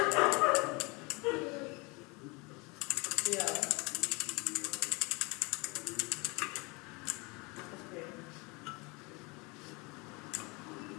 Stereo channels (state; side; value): quieter; right; 27.7 dB